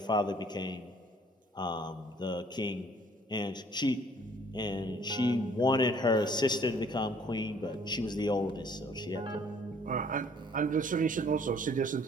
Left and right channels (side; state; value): both; normal; correlation 0.58